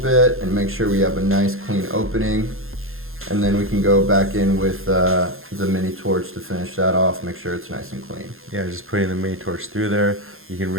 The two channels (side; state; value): left; late; 0.61 ms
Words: and make sure we have a nice clean opening. And then we can go back in with the mini torch to finish that off, make sure it's nice and clean. Yeah, just putting the mini torch through there. You can